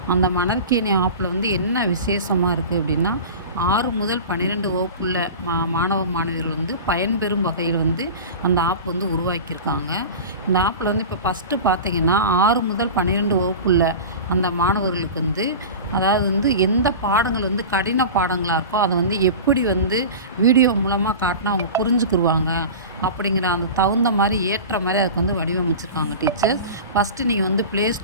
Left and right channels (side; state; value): both; inverted; correlation -0.32